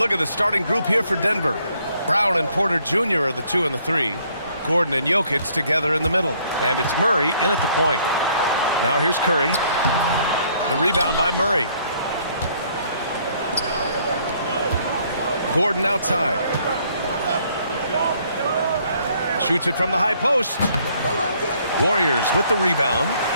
at the starting group here for Denver. Brown and Porter Jr. are the 2 and the 3. Gordon and Jokic together in the middle. And it's Murray in at the point. Now here's Curry. The rebound by Murray. Gordon outside. Shoots it from the high post. Warriors with the rebound.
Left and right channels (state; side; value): inverted; both; correlation -0.65